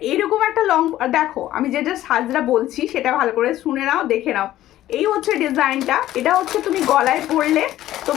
এরকম একটা লং, দেখো আমি যেটা সাজরা বলছি সেটা ভালো করে শুনে নাও, দেখে নাও। এই হচ্ছে ডিজাইনটা, এটা হচ্ছে তুমি গলায় পরলে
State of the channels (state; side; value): quieter; right; 13.9 dB